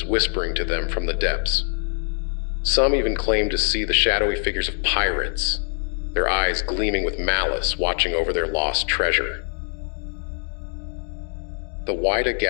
whispering to them from the depths. Some even claimed to see the shadowy figures of pirates, their eyes gleaming with malice, watching over their lost treasure. The Whydah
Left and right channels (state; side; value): silent; right; 63 dB below the other